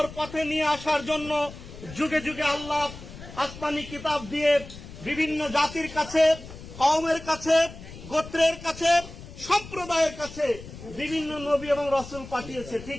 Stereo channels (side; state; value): left; noise; rumble, 14 dB below the sound